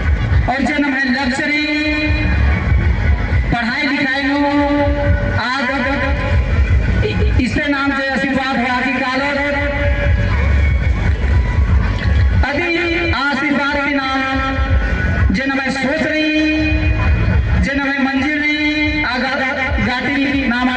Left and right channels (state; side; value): identical; both; correlation 1.00